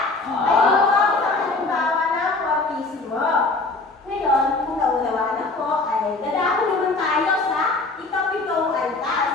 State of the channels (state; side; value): quieter; right; 3.4 dB